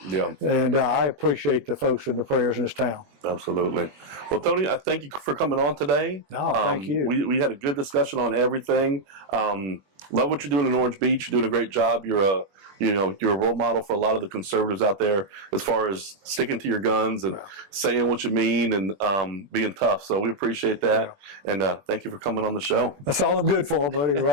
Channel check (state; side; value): late; left; 21 ms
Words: Yeah. And I appreciate the folks in the prayers in this town. Absolutely. Well, Tony, I thank you for coming on today. No, thank you. We had a good discussion on everything. Love what you're doing in Orange Beach. You're doing a great job. You're a role model for a lot of the conservatives out there as far as sticking to your guns and saying what you mean and being tough. So we appreciate that. And thank you for coming on the show. That's all I'm good for, buddy.